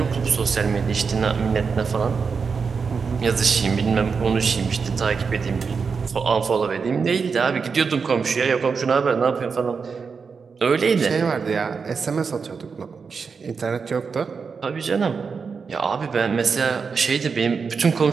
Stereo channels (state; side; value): quieter; left; 5.4 dB